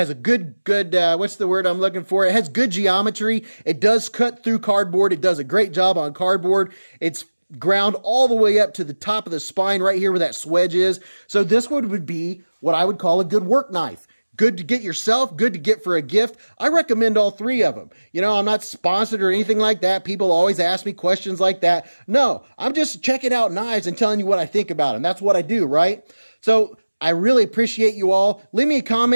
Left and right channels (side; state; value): both; inverted; correlation -1.00